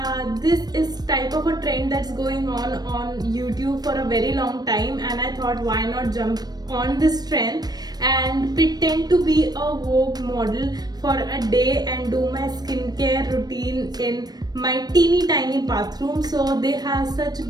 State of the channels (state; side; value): late; left; 0.19 ms